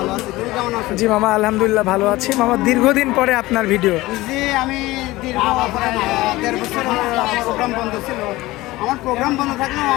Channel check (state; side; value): quieter; right; 18.8 dB